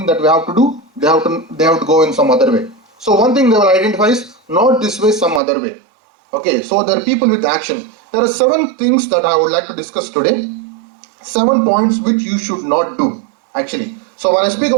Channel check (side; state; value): left; drops out; at 5.4 s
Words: that we have to do. They have to go in some other way. So one thing they will identify is not this way, some other way. Okay, so there are people with action. There are 7 things that I would like to discuss today. 7 points which you should not do, actually. So when I speak